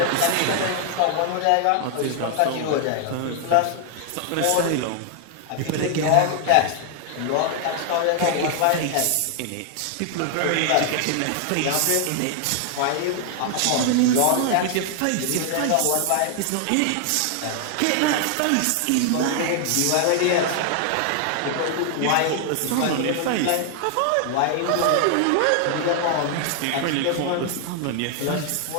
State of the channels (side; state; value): both; different; correlation 0.00